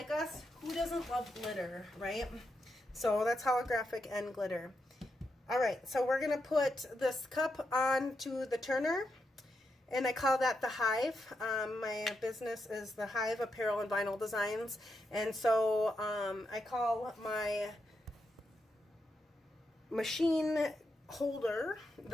us, who doesn't love glitter, right? So that's holographic and glitter. All right, so we're gonna put this cup onto the turner, and I call that the Hive. My business is the Hive Apparel and Vinyl Designs, and so I call my machine holder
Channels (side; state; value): both; normal; correlation 0.84